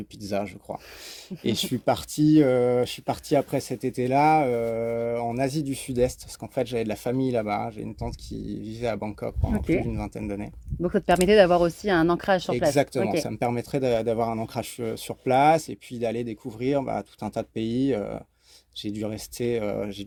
pizza, je crois. Et je suis parti après cet été-là en Asie du Sud-Est, parce qu'en fait j'avais de la famille là-bas. J'ai une tante qui vivait à Bangkok pendant Ok. plus d'une vingtaine d'années. Donc, ça te permettait d'avoir aussi un ancrage sur place. Exactement, Ok. ça me permettrait d'avoir un ancrage sur place et puis d'aller découvrir tout un tas de pays. J'ai dû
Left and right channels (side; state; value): both; identical; correlation 1.00